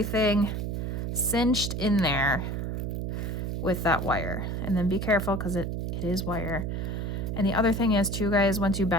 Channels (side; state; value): right; noise; hum, 2 dB below the sound